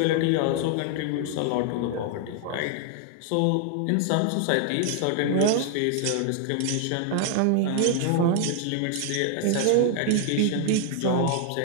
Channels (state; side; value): different; both; correlation 0.00